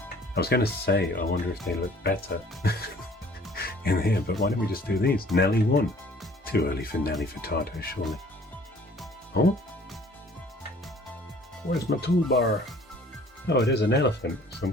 I was going to say, I wonder if they look better in here, but why don't we just do these? Nelly 1. Too early for Nelly Furtado, surely. Oh? Where's my toolbar? Oh, it is an elephant of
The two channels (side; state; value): both; normal; correlation 0.54